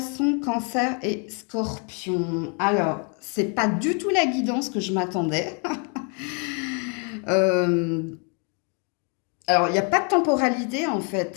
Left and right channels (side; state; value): right; quieter; 37.2 dB